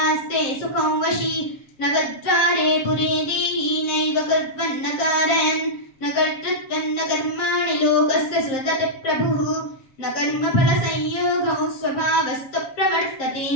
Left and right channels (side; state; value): right; late; 7.6 ms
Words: सुखं वशी नवद्वारे पुरे देहि नैव कुर्वन्न कारयन् न कर्तृत्वं न कर्माणि लोकस्य सृजति प्रभुः न कर्मफलसंयोगौ स्वभावस्तु प्रवर्तते